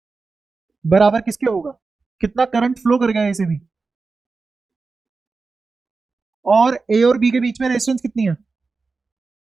बराबर किसके होगा, कितना करंट फ्लो कर गया ए से बी, और ए और बी के बीच में रेजिस्टेंस कितनी है,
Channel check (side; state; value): left; quieter; 4.2 dB